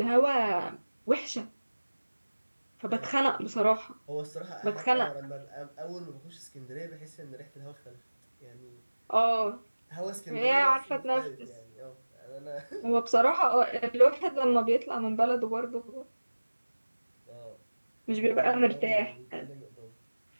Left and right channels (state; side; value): inverted; both; correlation -1.00